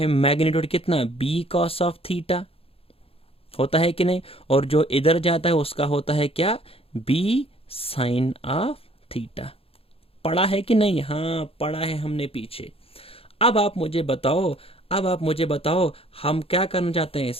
मैग्नीट्यूड कितना बी कॉस ऑफ थीटा, होता है कि नहीं, और जो इधर जाता है उसका होता है क्या बी साइन ऑफ थीटा। पढ़ा है कि नहीं, हाँ पढ़ा है हमने पीछे। अब आप मुझे बताओ हम क्या करना चाहते हैं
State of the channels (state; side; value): late; right; 0.27 ms